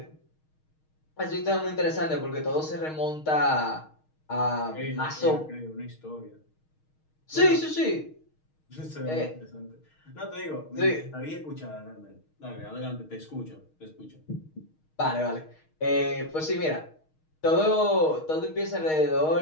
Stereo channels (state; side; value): late; right; 6.4 ms